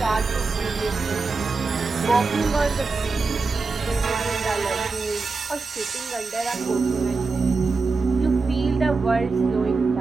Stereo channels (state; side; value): quieter; left; 4.2 dB